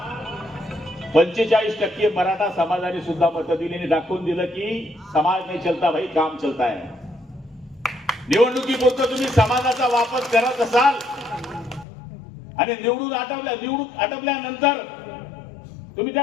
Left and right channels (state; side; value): drops out; right; at 11.9 s